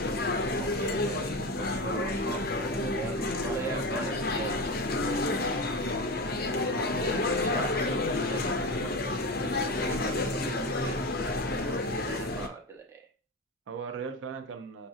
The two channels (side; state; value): both; normal; correlation 0.22